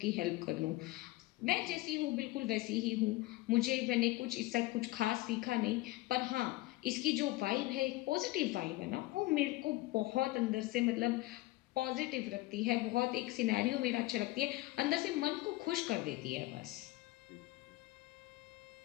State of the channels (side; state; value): right; quieter; 19.2 dB